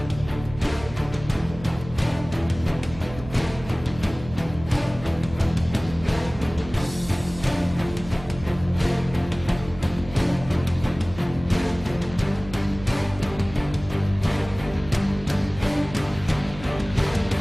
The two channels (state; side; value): noise; right; hum, 14 dB below the sound